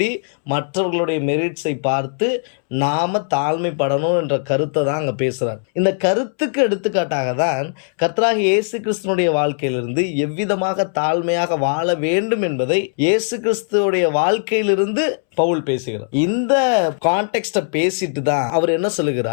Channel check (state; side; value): silent; right; 66 dB below the other